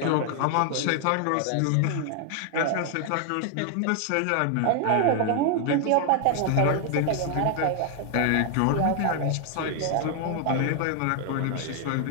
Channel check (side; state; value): both; different; correlation 0.00